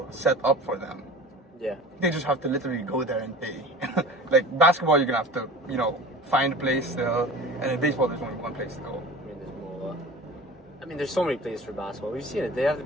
set up for them. Yeah. They just have to literally go there and pay. Like basketball, you're gonna have to, find a place still, and in baseball, there's only one place to go. I mean, there's more. I mean, there's so many places for basketball. We've seen it. They have the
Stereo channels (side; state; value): both; normal; correlation 0.39